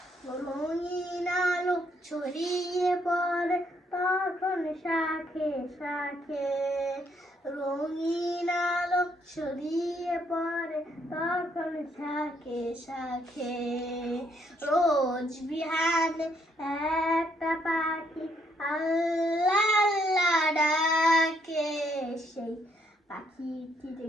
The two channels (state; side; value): normal; both; correlation 0.71